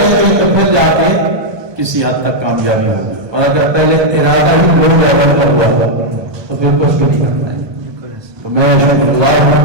گے تو پھر جا کے کسی حد تک کامیابی ہوگی. اور اگر پہلے ارادہ ہی لو لیول کا ہوا تو پھر کچھ بھی نہیں کرنا ہے. تو میں شکر گزار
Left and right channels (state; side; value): late; left; 1.2 ms